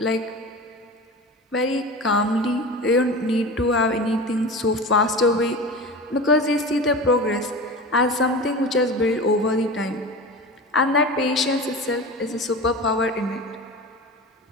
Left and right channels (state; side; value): normal; both; correlation 0.31